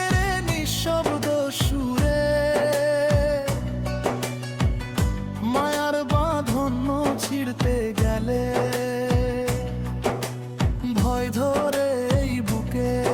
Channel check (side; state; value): both; identical; correlation 1.00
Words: রে নিঃশব্দ সুরে, মায়ার বাঁধন ছিঁড়তে গেলে ভয় ধরে এই বুকে।